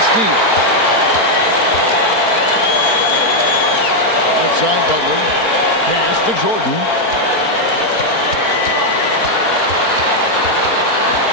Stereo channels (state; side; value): late; right; 4.4 ms